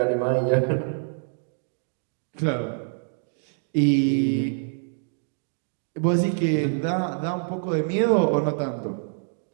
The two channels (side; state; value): left; silent; digital silence